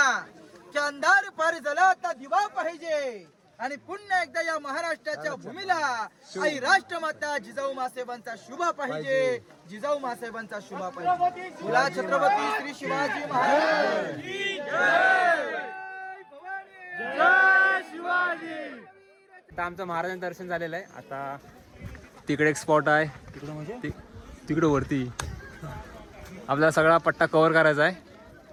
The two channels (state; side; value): identical; both; correlation 1.00